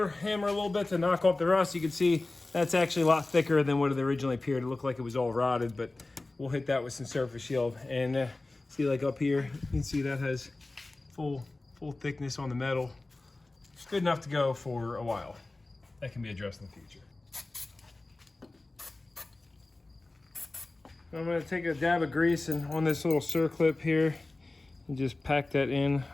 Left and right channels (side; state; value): right; quieter; 3.1 dB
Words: hammer a little bit to knock off the rust. You can see that's actually a lot thicker than what it originally appeared. It looked like it was all rotted, but we'll hit that with some surface shield. And see, like up here, you can see that has full thickness on the metal. It's good enough to go for a while. That can be addressed in the future. I'm gonna take a dab of grease and on this little circlip here, and just pack that in